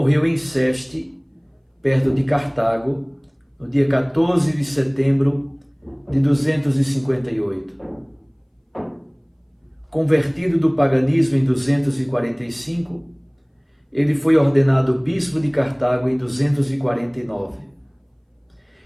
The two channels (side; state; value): both; identical; correlation 1.00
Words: em Seste, perto de Cartago, no dia 14 de setembro de 258. Convertido do paganismo em 245, ele foi ordenado bispo de Cartago em 249.